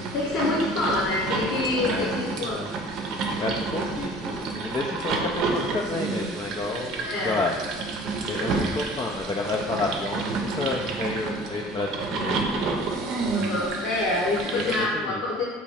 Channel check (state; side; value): normal; both; correlation 0.46